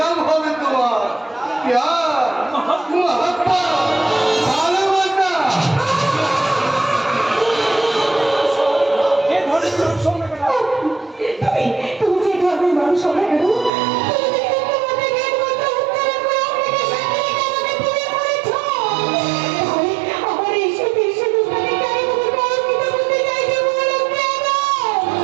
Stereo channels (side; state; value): left; drops out; at 13.7 s